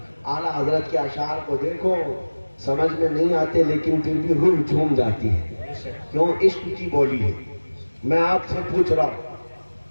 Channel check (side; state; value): both; inverted; correlation -1.00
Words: اعلیٰ حضرت کے اشعار کو دیکھو, سمجھ میں نہیں آتے لیکن پھر بھی روح جھوم جاتی ہے. کیوں؟ عشق کی بولی ہے. میں آپ سے پوچھ رہا ہوں,